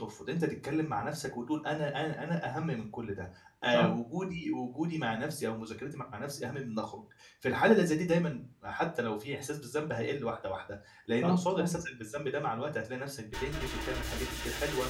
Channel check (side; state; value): both; identical; correlation 1.00